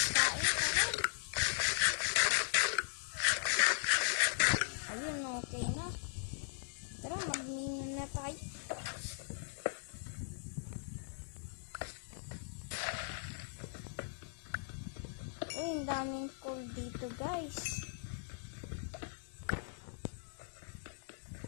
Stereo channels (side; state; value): right; silent; digital silence